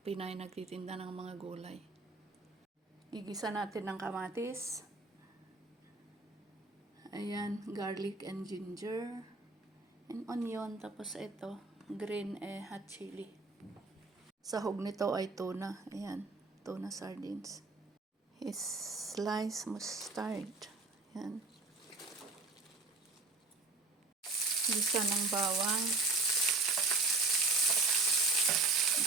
nagtitinda ng mga gulay. Igisa natin ng kamatis. Ayan, garlic and ginger. And onion. Tapos ito, green hot chili. Sahog nito ay tuna. Ayan, tuna sardines. Sliced mustard. Ayan. Gisa ng bawang. At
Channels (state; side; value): quieter; left; 3.6 dB